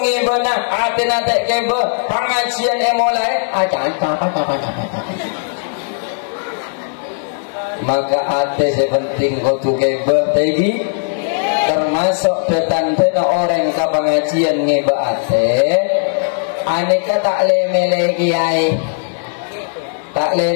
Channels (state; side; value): silent; right; 68 dB below the other